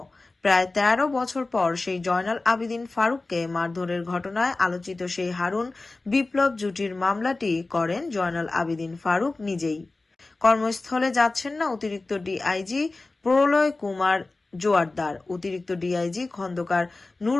প্রায় ১৩ বছর পর সেই জয়নাল আবেদিন ফারুককে মারধরের ঘটনায় আলোচিত সেই হারুন বিপ্লব জুটির মামলাটি করেন জয়নাল আবেদিন ফারুক নিজেই। কর্মস্থলে যাচ্ছেন না অতিরিক্ত ডিআইজি প্রলয় কুমার জোয়ারদার, অতিরিক্ত ডিআইজি খন্দকার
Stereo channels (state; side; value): quieter; right; 3.3 dB